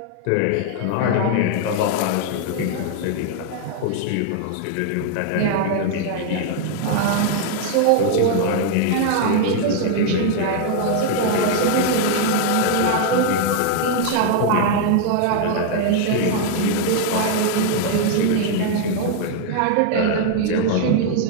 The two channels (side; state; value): both; different; correlation 0.00